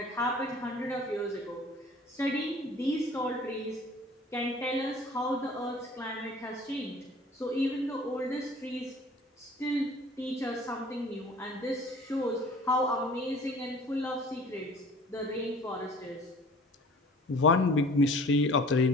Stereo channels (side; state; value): both; normal; correlation 0.48